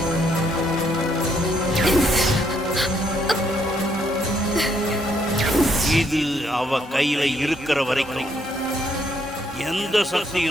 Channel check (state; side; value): normal; both; correlation 0.72